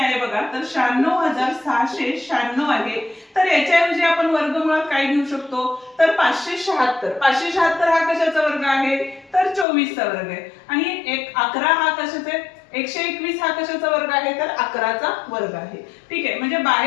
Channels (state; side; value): drops out; right; at 9.7 s